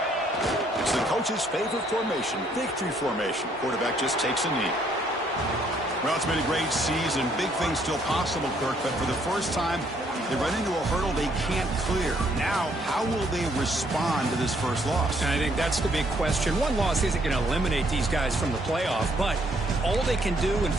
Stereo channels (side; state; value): both; normal; correlation 0.68